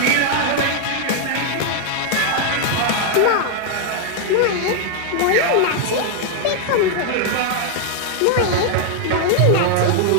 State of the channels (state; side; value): different; both; correlation 0.00